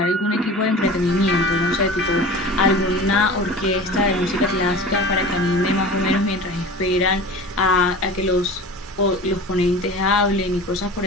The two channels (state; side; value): normal; both; correlation 0.36